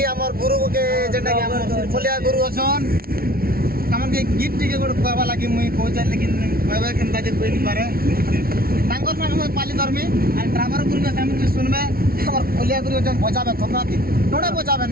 हमर गुरु के जेटा कि हमर सिरफलिया गुरु अछन हमन के गीत टिके गोड कहबा लागि मुई कहै छै लेकिन कहबा केनता जे कोइ नि पारे तांगर संग पाली धर्मी और ड्राइवर गुरु के हम सुनबे हमर फलिया गुरु जन बजाबे खतराती थोड़ा बजाबे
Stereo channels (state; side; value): late; left; 0.44 ms